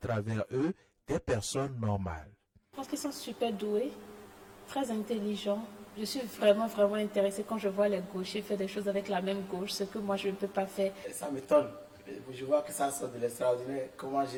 eux des personnes normales. Je pense qu'ils sont super doués, très intelligents. Je suis vraiment intéressée quand je vois les gauchers faire des choses avec la même gauche, ce que moi je ne peux pas faire. Ça m'étonne. Je vois que ça sort de l'extraordinaire. Comment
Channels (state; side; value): identical; both; correlation 1.00